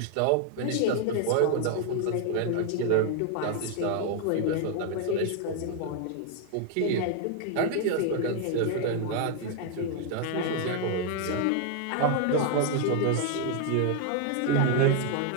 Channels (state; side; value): different; both; correlation 0.00